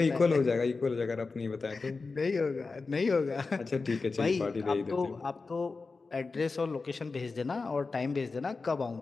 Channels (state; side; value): quieter; right; 4.1 dB